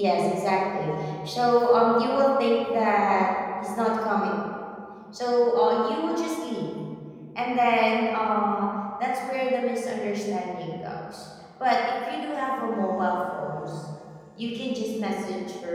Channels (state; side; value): identical; both; correlation 1.00